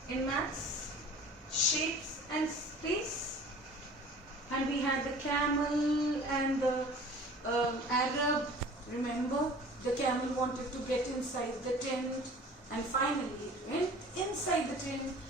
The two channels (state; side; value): normal; both; correlation 0.45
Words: in maths? Shapes and space. And we had the camel and the Arab. Remember, the camel wanted to get inside the tent. And finally it went inside the tent